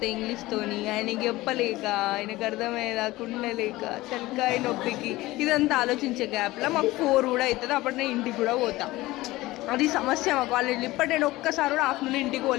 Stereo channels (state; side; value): quieter; right; 18.6 dB